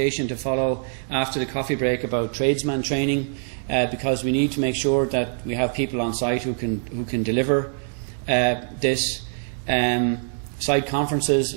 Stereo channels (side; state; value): left; silent; 63 dB below the other